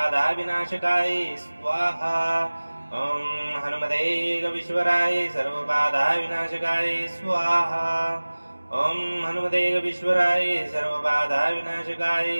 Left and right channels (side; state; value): both; inverted; correlation -1.00